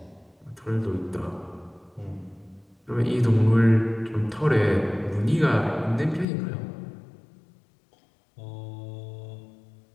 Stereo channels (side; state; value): right; drops out; at 6.2 s